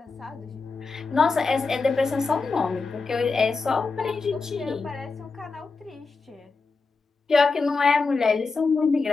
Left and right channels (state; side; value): quieter; right; 4.2 dB